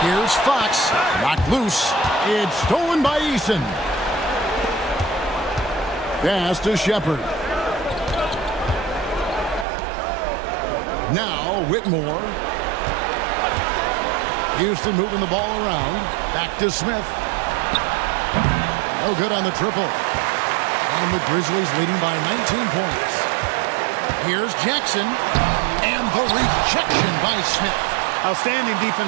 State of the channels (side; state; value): left; drops out; at 9.7 s